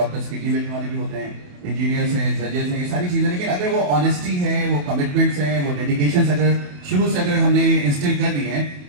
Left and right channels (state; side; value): late; left; 28 ms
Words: किडनी बेचने वाले भी होते हैं, इंजीनियर्स हैं, जजेस हैं, ये सारी चीज़ें, लेकिन अगर वो ऑनेस्टी है, वो कमिटमेंट्स हैं, वो डेडिकेशन अगर शुरू से अगर हमने इंस्टिल कर दिए